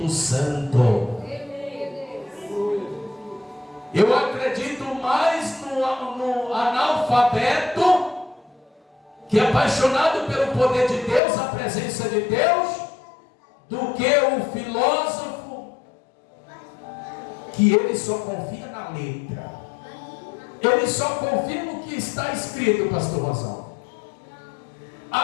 Santo. Eu acredito mais no analfabeto, que é apaixonado pelo poder de Deus, a presença de Deus, do que o filósofo, que ele só confia na letra. Ele só confia no que está escrito, pastor Rosão.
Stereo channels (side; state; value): right; drops out; at 11.2 s